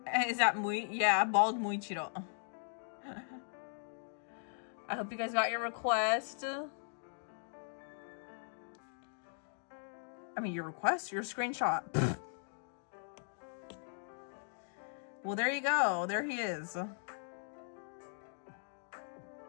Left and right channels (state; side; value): silent; right; digital silence